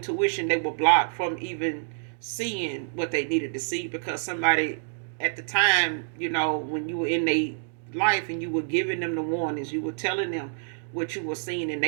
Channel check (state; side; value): silent; left; digital silence